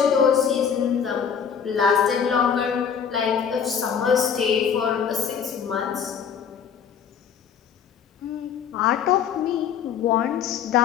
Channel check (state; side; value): quieter; right; 7.4 dB